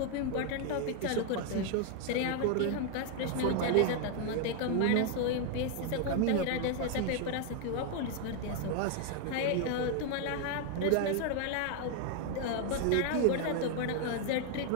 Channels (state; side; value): different; both; correlation 0.00